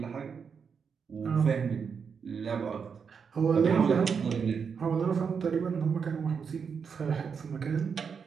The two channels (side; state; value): left; quieter; 6.3 dB